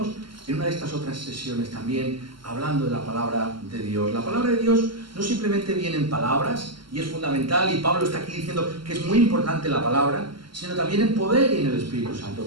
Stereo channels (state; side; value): late; left; 0.73 ms